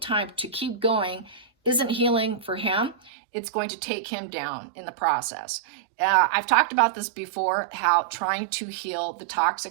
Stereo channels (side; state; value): left; drops out; at 3.1 s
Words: to keep going isn't healing for him. It's going to take him down in the process. I've talked about this before, how trying to heal the